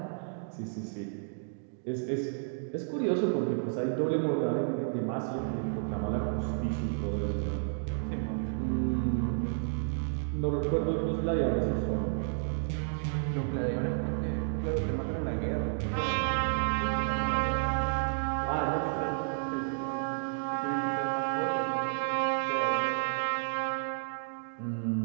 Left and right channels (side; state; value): left; silent; digital silence